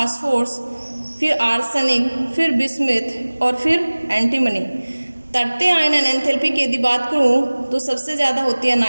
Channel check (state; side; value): inverted; both; correlation -1.00